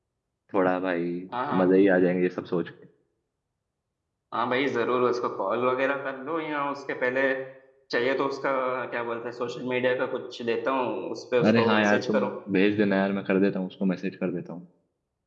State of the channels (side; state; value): both; identical; correlation 1.00